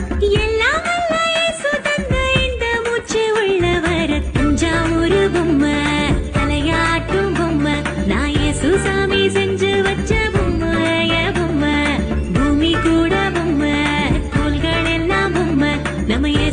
எல்லாம் வல்ல இயேசு தந்த இந்த மூச்சு உள்ளவர. தஞ்சாவூரு பொம்மை, தலையாட்டும் பொம்மை, நான் சுசாமி செஞ்சு வச்ச பொம்மை, பொம்மை, பூமி கூட பொம்மை, தோள்கள் எல்லாம் பொம்மை, நம்ம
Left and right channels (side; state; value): both; identical; correlation 1.00